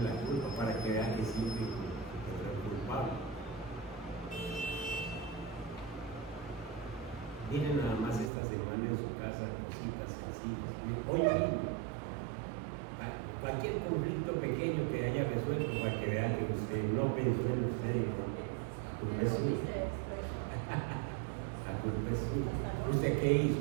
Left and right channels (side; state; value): left; drops out; at 8.3 s